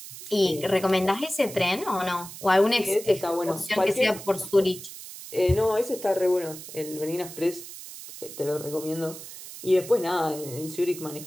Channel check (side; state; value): right; noise; hiss, 13 dB below the sound